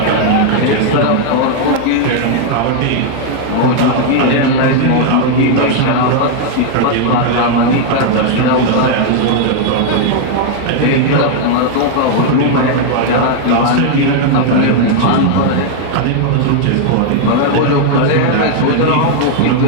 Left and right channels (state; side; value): different; both; correlation 0.00